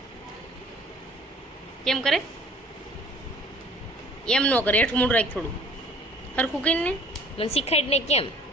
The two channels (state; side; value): normal; both; correlation 0.52